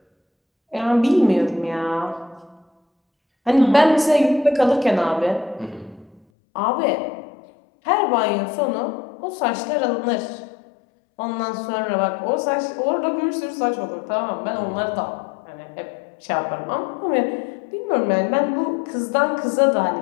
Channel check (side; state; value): right; drops out; at 6.2 s